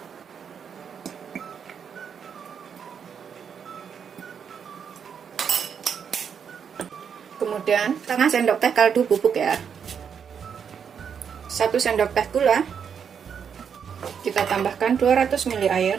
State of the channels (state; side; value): quieter; left; 7.3 dB